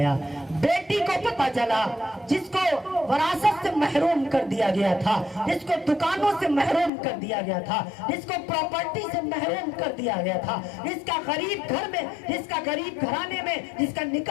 بیٹی کو پتہ چلا جس کو وراثت سے محروم کر دیا گیا تھا، جس کو دکانوں سے محروم کر دیا گیا تھا، جس کو پراپرٹی سے محروم کر دیا گیا تھا، جس کا غریب گھر میں، جس کا غریب گھرانے میں جس کا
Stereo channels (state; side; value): drops out; right; at 6.9 s